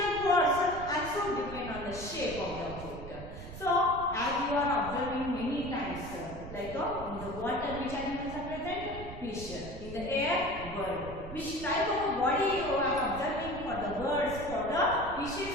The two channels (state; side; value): noise; right; rumble, 11 dB below the sound